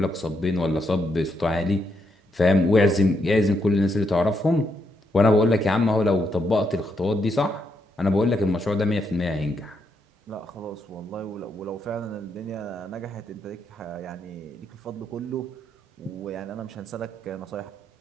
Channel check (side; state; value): both; normal; correlation 0.79